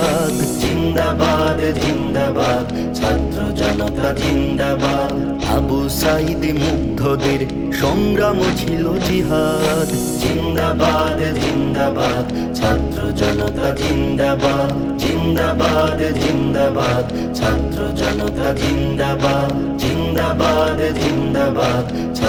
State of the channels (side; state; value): both; identical; correlation 1.00